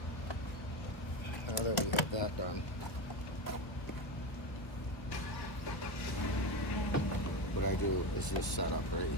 Now that we have that done, what I do is this setup right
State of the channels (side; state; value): right; late; 1.3 ms